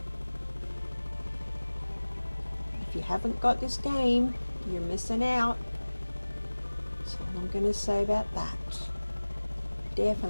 If you haven't got this game, you're missing out. That's all I'm going to say about that.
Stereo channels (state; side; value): inverted; both; correlation -1.00